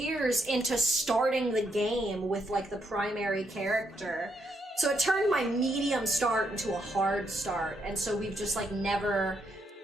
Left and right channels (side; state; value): both; normal; correlation 0.77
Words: into starting the game with like the primary character. So it turned my medium start into a hard start, and so we've just like